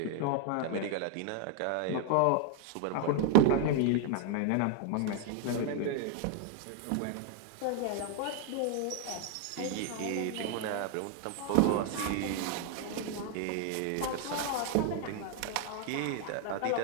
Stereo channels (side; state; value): both; different; correlation 0.00